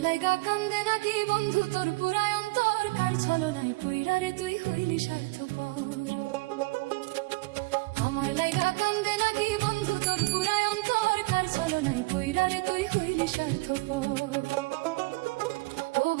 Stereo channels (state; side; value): quieter; left; 25.1 dB